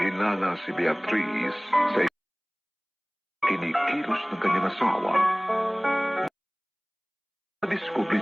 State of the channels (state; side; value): identical; both; correlation 1.00